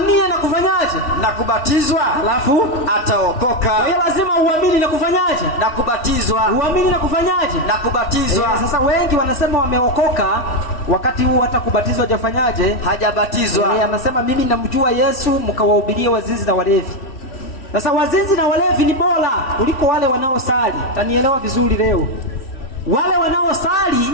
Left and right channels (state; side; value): late; right; 3.1 ms